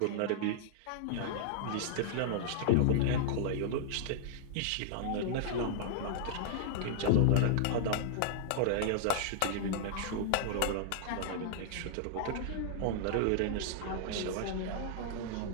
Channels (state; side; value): different; both; correlation -0.01